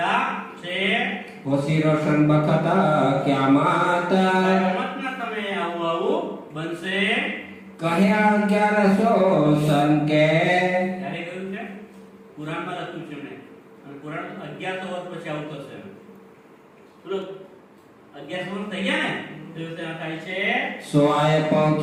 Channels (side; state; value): both; identical; correlation 1.00